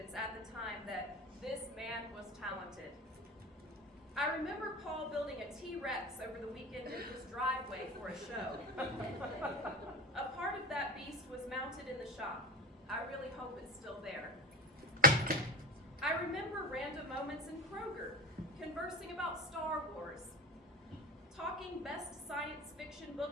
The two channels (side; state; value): both; normal; correlation 0.25